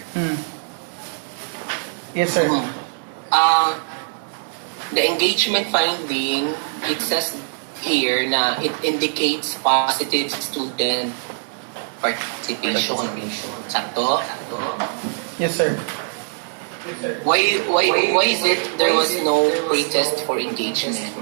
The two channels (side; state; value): left; silent; digital silence